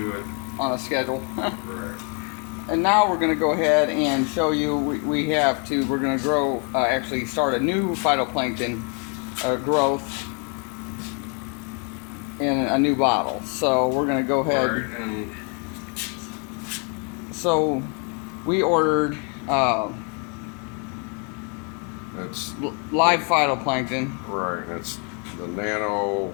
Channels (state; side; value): quieter; right; 37.6 dB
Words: it. on a schedule. Right. And now we're going to go ahead and show you, we're going to grow, actually start a new phytoplankton growth in a new bottle. So we're going to go ahead. Right, and So we ordered it's live phytoplankton. right. It's the nano.